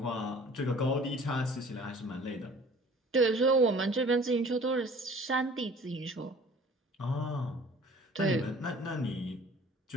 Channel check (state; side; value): normal; both; correlation 0.49